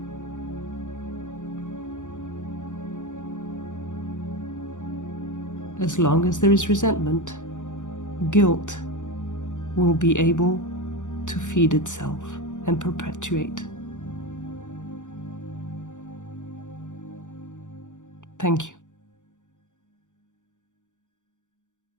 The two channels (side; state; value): right; late; 0.86 ms